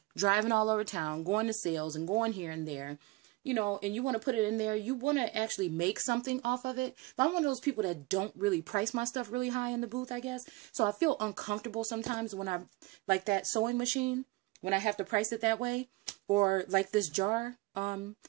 driving all over town, going to sales and going here and there, you know, and you want to put it in there, you want to actually make something off of it. But I'm one of those people that don't really price my stuff really high in the booth, I guess. So I feel uncomfortable sometimes when I, like that sewing machine, when I have to price it that way, or like this jar. I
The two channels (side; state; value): left; quieter; 22.2 dB